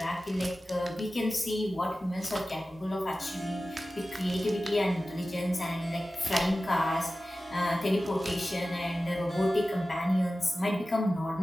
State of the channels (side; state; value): both; normal; correlation 0.95